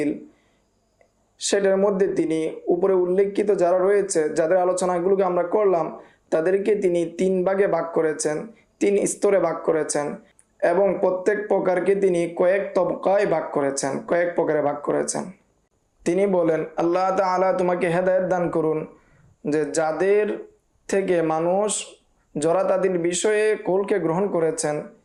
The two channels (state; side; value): identical; both; correlation 1.00